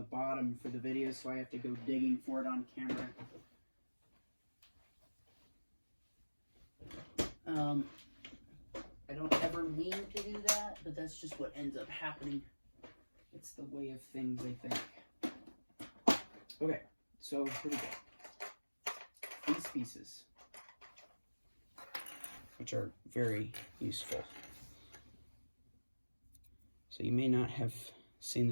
bottom for the video, so I have to go digging for it on camera. I don't ever mean to do that, but that's just what ends up happening. It's the way of things, I think. Okay, so here we go. These pieces, which are very useful. So you may not have seen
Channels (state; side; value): inverted; both; correlation -1.00